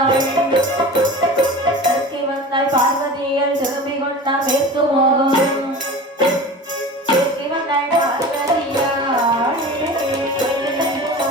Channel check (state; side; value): normal; both; correlation 0.35